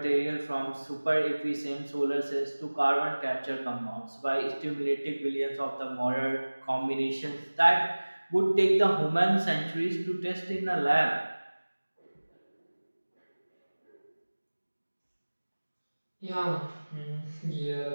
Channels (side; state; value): both; inverted; correlation -1.00